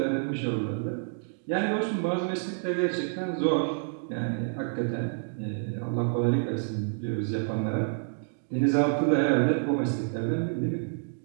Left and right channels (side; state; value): left; silent; digital silence